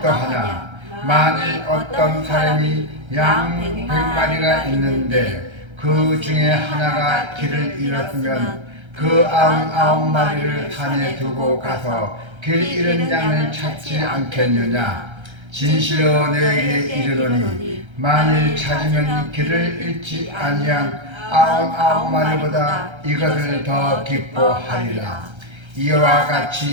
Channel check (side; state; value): left; late; 1.3 ms